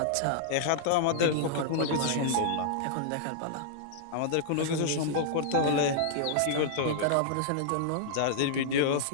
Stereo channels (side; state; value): both; different; correlation -0.01